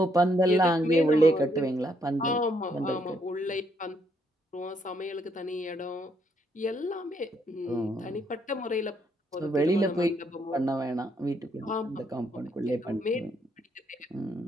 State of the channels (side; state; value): both; normal; correlation 0.73